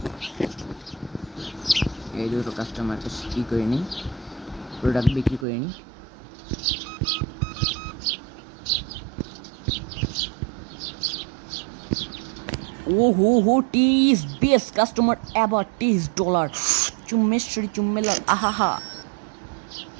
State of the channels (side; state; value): left; drops out; at 5.5 s